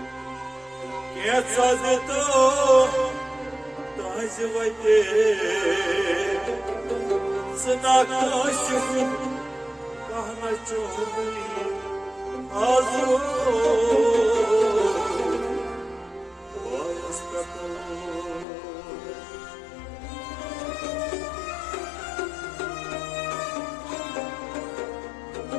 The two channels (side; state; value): right; drops out; at 18.4 s